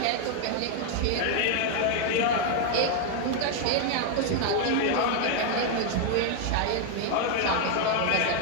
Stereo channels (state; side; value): different; both; correlation 0.01